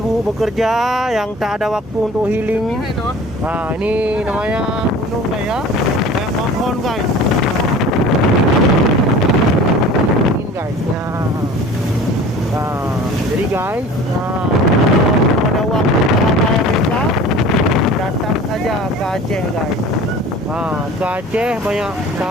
bekerja, yang tak ada waktu untuk healing. Nah, ini namanya gunung guys ya. Kayak pohon guys. Ini guys ya. Nah, jadi guys, kalau ada waktu selama Amerika, datang saja ke Aceh guys. Ke Aceh banyak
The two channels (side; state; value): both; normal; correlation 0.43